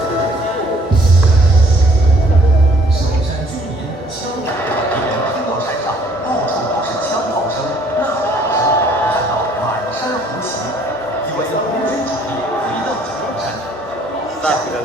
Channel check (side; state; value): both; normal; correlation 0.60